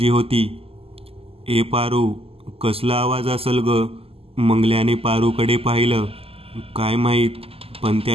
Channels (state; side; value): late; left; 0.28 ms